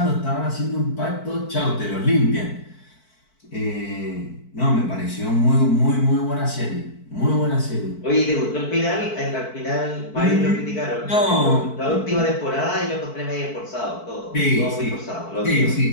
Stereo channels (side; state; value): right; late; 4.6 ms